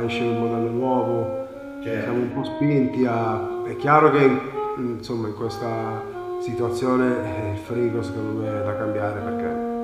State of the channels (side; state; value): both; identical; correlation 1.00